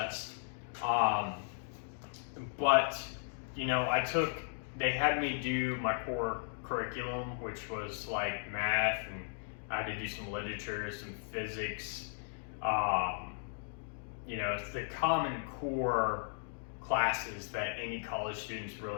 But, you know, they had me do my core curriculum, which was like math, and I had to do some literature, some physics. You know, it's the common core classes that any college student's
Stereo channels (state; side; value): silent; right; digital silence